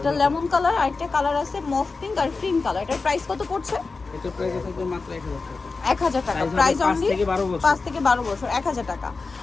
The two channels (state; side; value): quieter; right; 4.1 dB